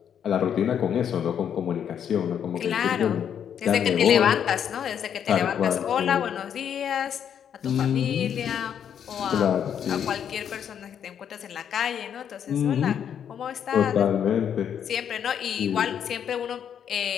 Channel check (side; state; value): right; quieter; 8.6 dB